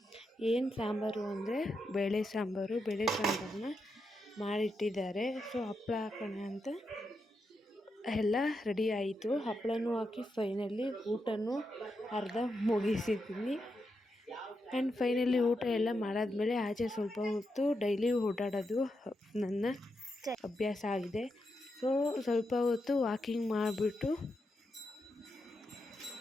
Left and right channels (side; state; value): both; normal; correlation 0.85